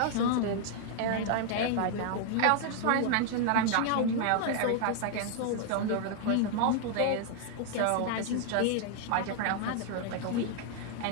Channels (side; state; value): both; different; correlation 0.00